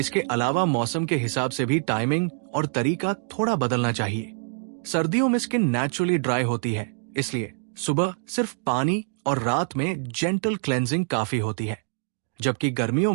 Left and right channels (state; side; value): silent; left; digital silence